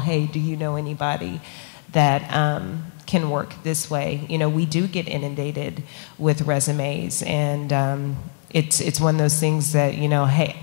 do you know anybody that can work this way? You know, we do get inundated with resumes, and it's one of those things that, you know,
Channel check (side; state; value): right; silent; digital silence